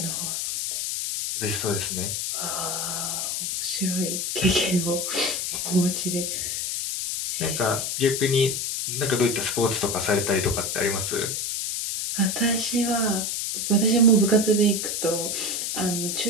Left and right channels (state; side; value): noise; left; hiss, 2 dB below the sound